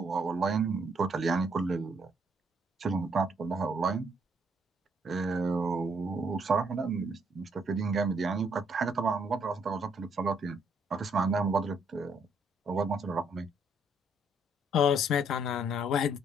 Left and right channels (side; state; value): both; normal; correlation 0.69